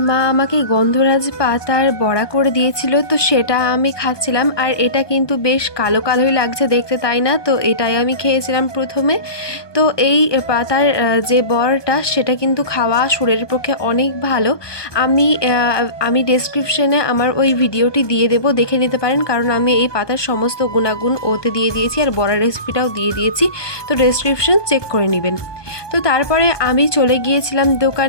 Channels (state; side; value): late; right; 1.2 ms